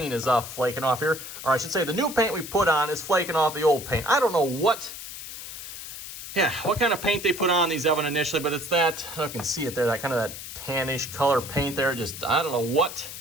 is flaking off here. Or I should say the new paint we put on is flaking off the old paint. I don't know what kind of paint they put on these, Evan, initially, but it's that, I don't know if you can see it there, that kind of that tannish color paint there. Just, I don't know what,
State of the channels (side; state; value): left; noise; hiss, 10 dB below the sound